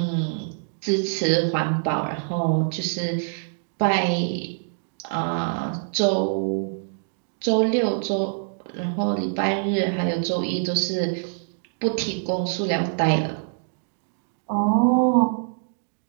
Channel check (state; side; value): silent; left; digital silence